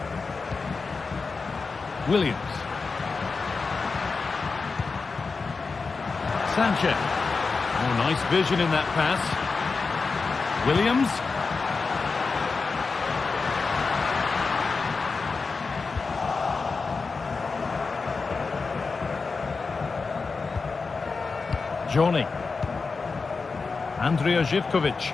Williams. Sanchez. Oh, nice vision in that pass. Williams. Johnny. Andrija Živković.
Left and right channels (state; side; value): quieter; right; 4.5 dB